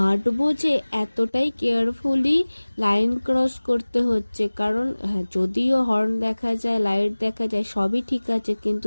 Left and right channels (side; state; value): both; inverted; correlation -1.00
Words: যে এতটাই কেয়ারফুলি লাইন ক্রস করতে হচ্ছে, কারণ হ্যাঁ, যদিও হর্ন দেখা যায়, লাইট দেখা যায়, সবই ঠিক আছে,